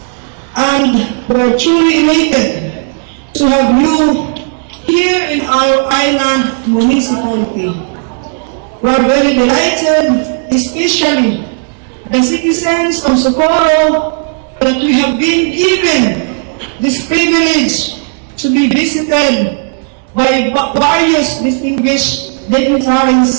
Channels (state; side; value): silent; left; 62 dB below the other